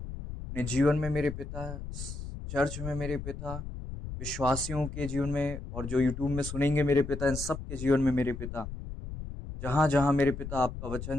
जीवन में मेरे पिता, चर्च में मेरे पिता, विश्वासियों के जीवन में और जो यूट्यूब में सुनेंगे मेरे पिता, इन सब के जीवन में मेरे पिता, जहाँ-जहाँ मेरे पिता आपका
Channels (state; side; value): noise; left; rumble, 8 dB below the sound